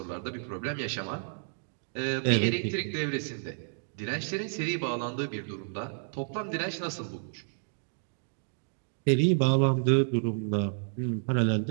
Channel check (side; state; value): left; silent; digital silence